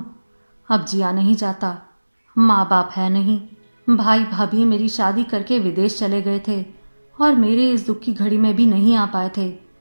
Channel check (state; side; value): inverted; both; correlation -1.00